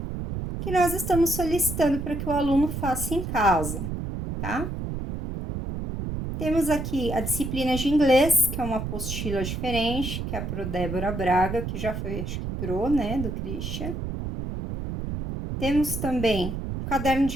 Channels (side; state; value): right; noise; rumble, 5 dB below the sound